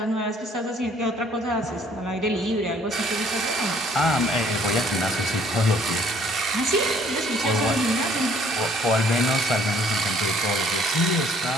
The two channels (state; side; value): normal; both; correlation 0.60